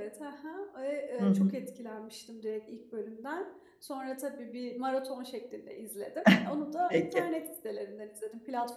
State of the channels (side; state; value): both; identical; correlation 1.00